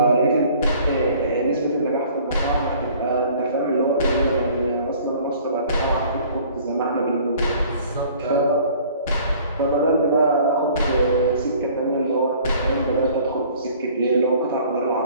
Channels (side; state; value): both; inverted; correlation -0.53